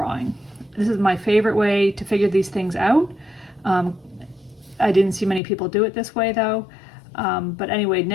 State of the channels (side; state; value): right; drops out; at 5.4 s